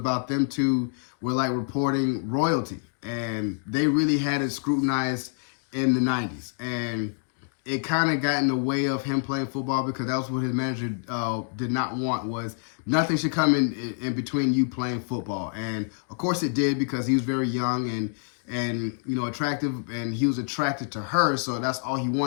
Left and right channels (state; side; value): silent; right; digital silence